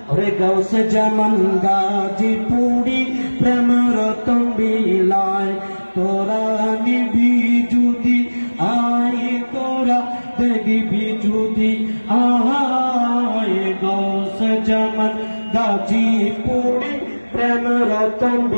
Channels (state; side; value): inverted; both; correlation -1.00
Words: ওরে গাউসে জামান গাজীপুরি প্রেম রতন বিলায়। তোরা নিবি যদি আয় তোরা দেখবি যদি আয়, গাউসে জামান গাজীপুরি প্রেম রতন